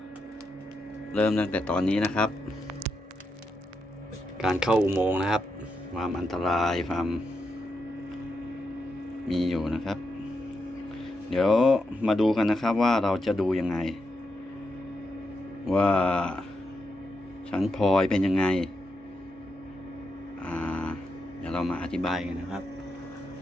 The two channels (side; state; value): both; normal; correlation 0.84